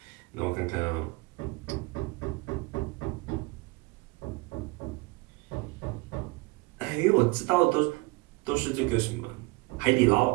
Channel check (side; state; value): left; quieter; 24.1 dB